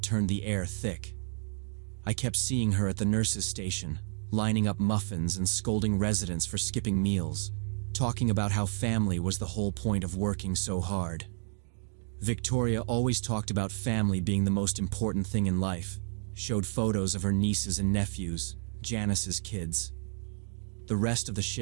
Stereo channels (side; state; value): left; silent; 57 dB below the other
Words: turned the air thick. I kept seeing her at the nurse's station, lining up muffins and scolding residents for skipping meals, talking about how family was the whole point of working so hard. Victoria always talked about family being the most important thing in life, showed photos of her nieces and nephews, Janice's kids. The rest of the